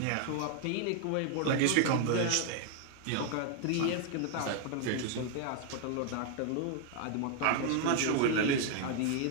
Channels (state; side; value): different; both; correlation 0.00